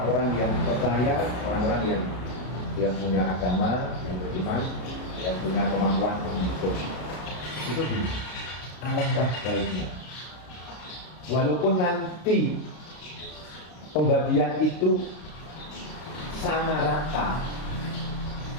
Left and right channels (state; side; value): late; right; 33 ms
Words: yang percaya, orang-orang yang punya agama, yang beriman, yang punya kemampuan untuk itu alangkah baiknya. Walaupun nanti pembagian itu sama rata,